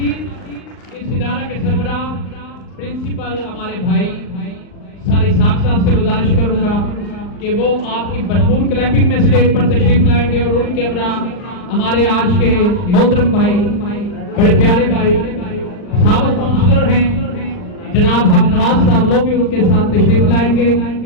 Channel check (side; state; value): right; late; 39 ms